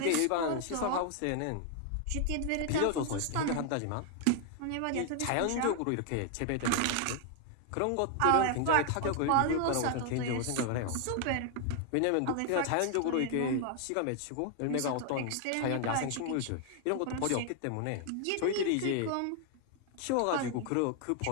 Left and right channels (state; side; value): different; both; correlation 0.00